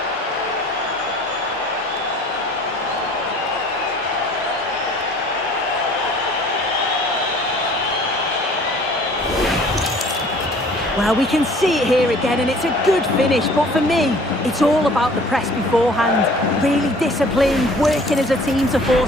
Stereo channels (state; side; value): normal; both; correlation 0.51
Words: Well, we can see it here again, and it's a good finish. But for me, it's all about the press beforehand. Really disciplined, working as a team to